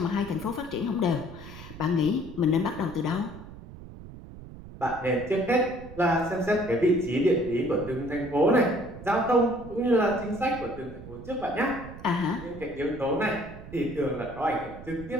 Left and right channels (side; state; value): right; noise; rumble, 15 dB below the sound